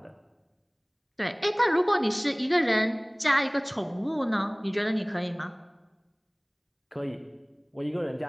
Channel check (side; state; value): both; identical; correlation 1.00